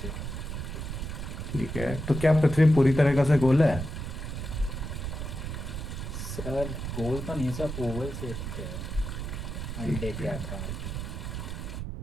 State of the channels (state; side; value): noise; right; rumble, 5 dB below the sound